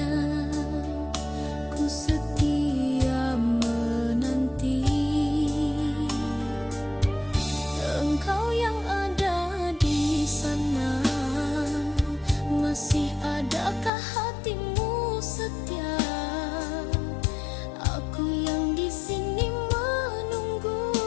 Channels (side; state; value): right; drops out; at 13.9 s